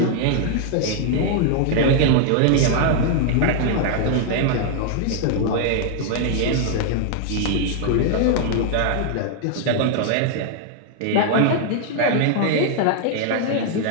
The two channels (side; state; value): both; different; correlation 0.00